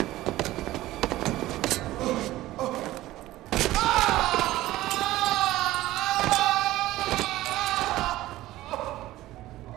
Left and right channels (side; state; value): left; quieter; 16.2 dB